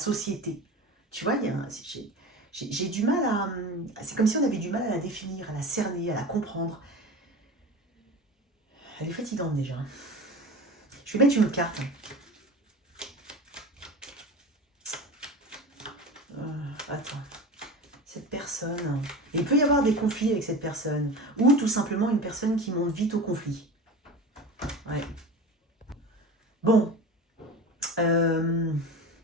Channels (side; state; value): both; normal; correlation 0.31